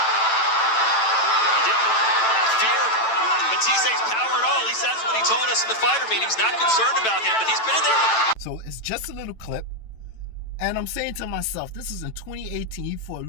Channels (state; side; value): late; right; 9.0 ms